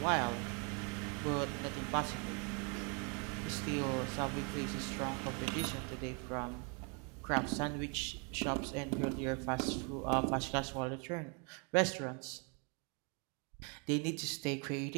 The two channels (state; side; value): quieter; left; 34.8 dB